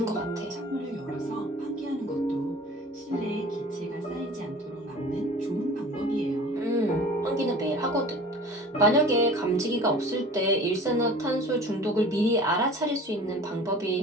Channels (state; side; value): normal; both; correlation 0.42